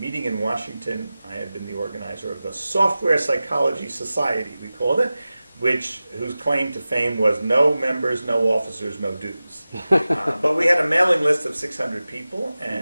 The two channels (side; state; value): both; inverted; correlation -0.96